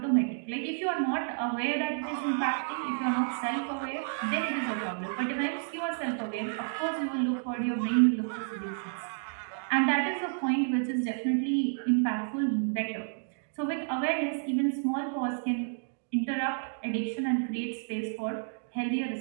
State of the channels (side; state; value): left; silent; digital silence